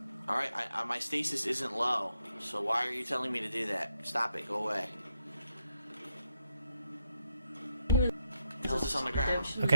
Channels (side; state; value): both; inverted; correlation -0.81